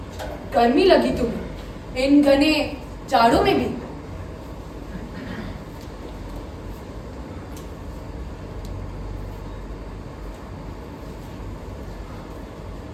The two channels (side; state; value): both; identical; correlation 1.00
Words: गर्मी लगी तुम्हें इन घने जाड़ों में भी?